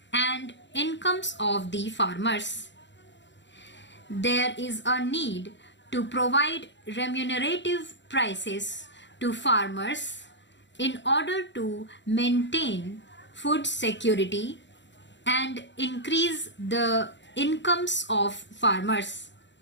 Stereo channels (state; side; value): late; right; 0.52 ms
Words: and incomes of the farmers. There is a need to provide remunerative prices to farmers in order to maintain food security and increase the incomes of farmers.